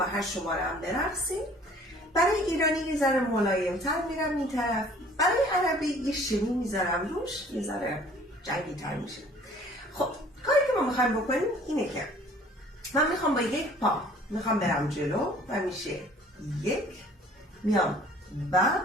8 شماره هم برقصید. برای ایرانی یه ذره ملایم‌تر میرم این طرف. برای عربی یه شمی میذارم روش، یه ذره جنگی‌تر میشه. خب کاری که ما میخوایم بکنیم اینه که من میخوام با یک پا میخوام برم جلو و میشه 1 میام و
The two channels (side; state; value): both; normal; correlation 0.53